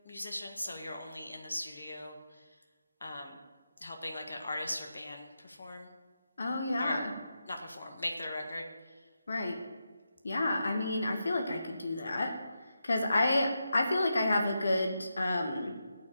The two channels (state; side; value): inverted; both; correlation -0.87